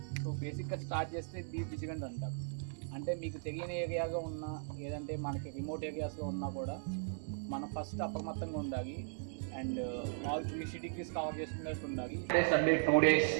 సో బేసిక్గా స్టార్ట్ చేస్తే డీప్ విజిలెంట్ అంటారు. అంటే మీకు తెలియని ఏరియాగా ఉన్నా లేదంటే మనకి రిమోట్ ఏరియాస్లో ఉన్నా కూడా మనం ఫస్ట్ అప్రమత్తంగా ఉండాలి. అండ్ ఆల్ 360 degrees కవర్ చేసుకున్నట్టు ఉండాలి. సండే 2 days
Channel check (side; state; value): left; silent; 53 dB below the other